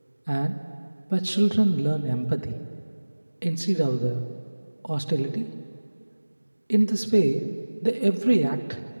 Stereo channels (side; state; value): both; inverted; correlation -1.00